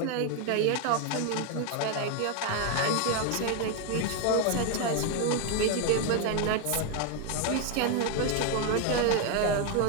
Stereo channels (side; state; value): both; different; correlation 0.01